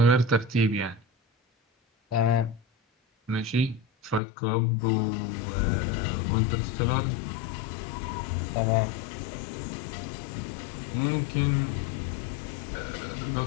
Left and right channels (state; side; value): drops out; right; at 4.2 s